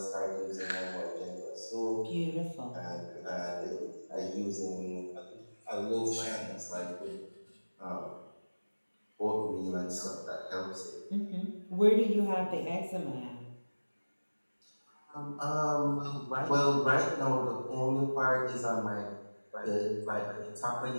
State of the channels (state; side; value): inverted; both; correlation -1.00